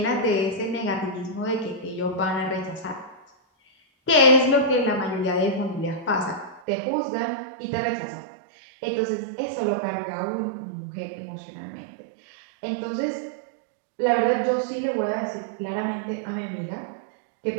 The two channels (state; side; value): drops out; left; at 6.6 s